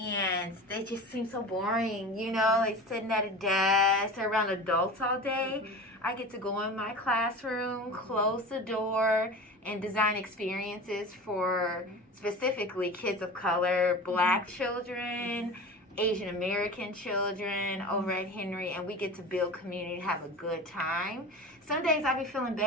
they just seem so boring, like sitting at a desk or around adults all day. I get to go in my classroom, close the door, and design experiences for specifically kids of color, black children, Asian American children over at Henry, and we get to build community, have a good time. Some days I be feeling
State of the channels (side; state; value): both; normal; correlation 0.33